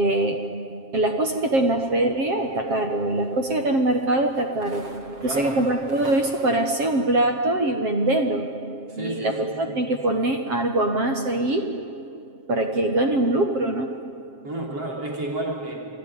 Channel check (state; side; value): late; left; 7.5 ms